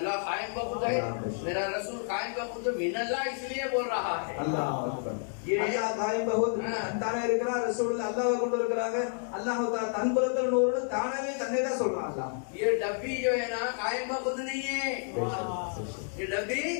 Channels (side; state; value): right; silent; 56 dB below the other